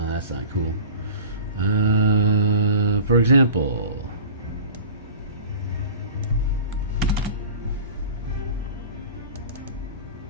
that's not cool. For example,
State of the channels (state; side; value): inverted; both; correlation -0.39